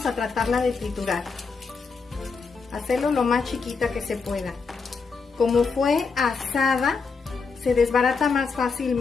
a tratarla de triturar. Hacerlo lo más chiquita que se pueda. Como fue asada, se desbarata más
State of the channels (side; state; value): right; quieter; 4.9 dB